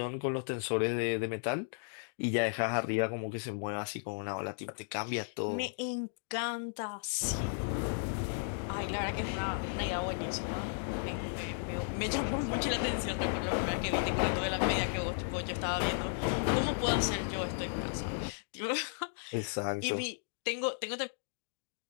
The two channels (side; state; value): right; silent; digital silence